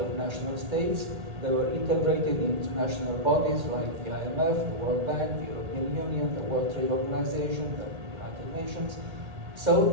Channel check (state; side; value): late; left; 1.8 ms